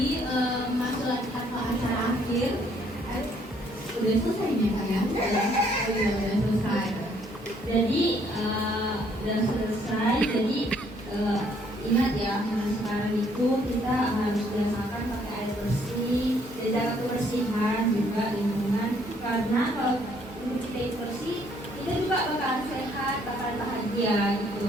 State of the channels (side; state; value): both; normal; correlation 0.66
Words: masuk ke acara akhir, udah selesai nih Kak ya? Oh iya udah selesai. Jadi udah selesai. Jadi ingat ya, sekarang itu kita harus biasakan pakai air bersih, jaga kebersihan juga lingkungan. Karena kalau tubuh kita itu bersih, kita juga bakalan sehat, bakalan bahagia